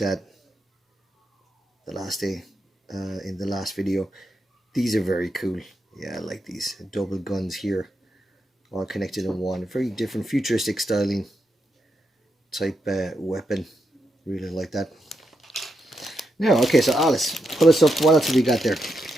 at the last day in the last video. These are very cool. Yeah, I like these double guns here all connected in one. Very different futuristic styling type weapon. Really like that. Now, okay, so Alice, pull us up. What else have we got there?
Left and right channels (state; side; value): normal; both; correlation 0.84